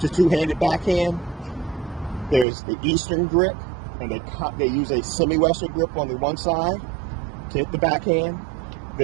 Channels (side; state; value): left; drops out; at 2.5 s